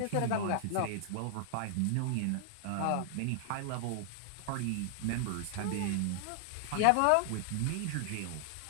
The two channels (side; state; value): both; different; correlation 0.00